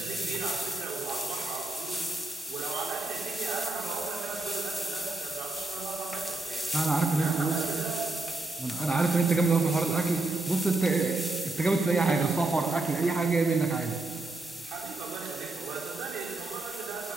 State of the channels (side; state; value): left; quieter; 3.0 dB